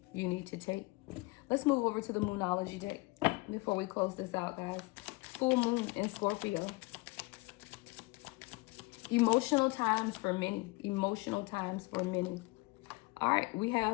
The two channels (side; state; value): right; quieter; 24.4 dB